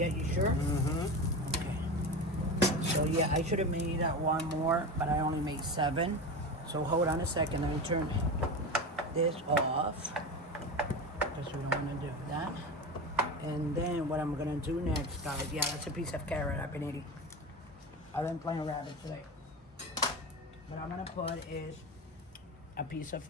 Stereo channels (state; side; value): normal; both; correlation 0.24